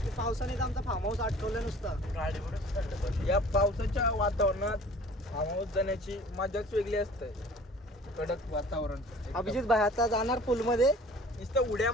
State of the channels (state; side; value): normal; both; correlation 0.47